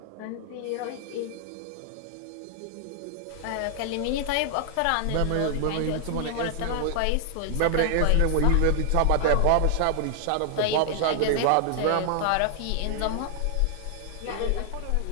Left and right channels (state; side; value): different; both; correlation 0.00